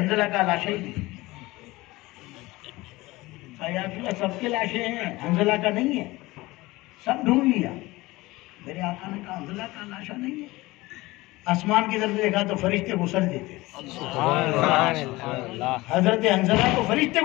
کا لاشیں ہی نہیں۔ سب کے لاشیں ہیں، حنظلہ کا نہیں ہے، سب ڈھونڈ لیا۔ میرے آقا نے کہا حنظلہ کا لاشا نہیں ہے۔ آسمان کی طرف دیکھا تو فرشتے غسل دیتے تھے، حضرت حنظلہ کو فرشتے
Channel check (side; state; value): right; quieter; 20.2 dB